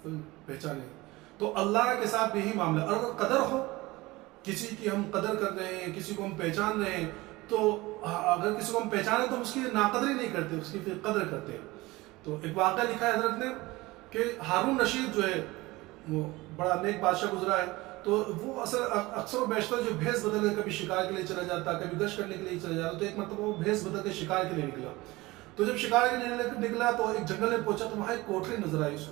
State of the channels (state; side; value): quieter; left; 20.7 dB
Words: پہچانے تو اللہ کے ساتھ بھی یہی معاملہ۔ اور اگر قدر ہو، کسی کی ہم قدر کر رہے ہیں، کسی کو ہم پہچان رہے ہیں، تو اگر کسی کو ہم پہچانے تو ہم اس کی ناقدری نہیں کرتے، اس کی پھر قدر کرتے ہیں۔ تو ایک واقعہ لکھا ہے حضرت نے کہ ہارون رشید جو ہے وہ بڑا نیک بادشاہ گزرا ہے، تو وہ اکثر و بیشتر جو بھیس بدل کے کبھی شکار کے لیے چلا جاتا، کبھی گشت کرنے کے لیے چلا جاتا، تو ایک مرتبہ وہ بھیس بدل کے شکار کے لیے نکلا۔ تو جب شکار کے لیے نکلا تو ایک جنگل میں پہنچا، تو وہاں ایک کوٹری نظر آئی اس